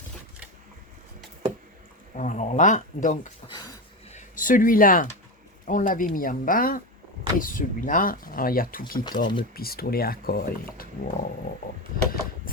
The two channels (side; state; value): both; normal; correlation 0.18